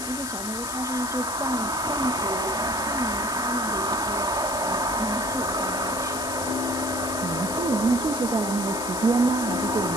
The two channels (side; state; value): left; noise; hiss, 6 dB below the sound